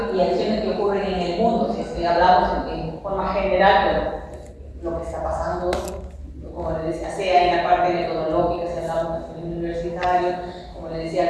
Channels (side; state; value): both; identical; correlation 1.00